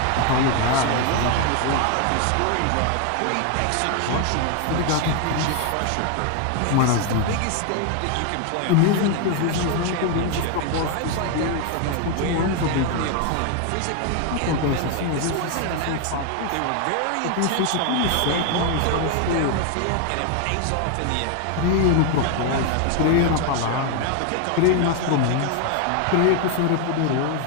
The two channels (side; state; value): both; different; correlation 0.01